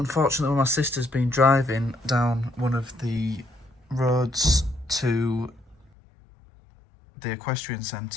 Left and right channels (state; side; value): drops out; right; at 5.9 s